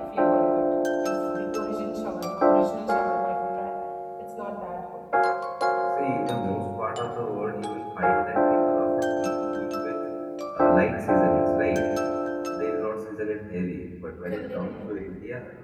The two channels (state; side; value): identical; both; correlation 1.00